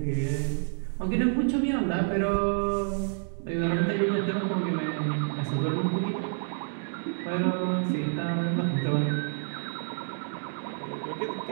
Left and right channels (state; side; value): silent; left; 59 dB below the other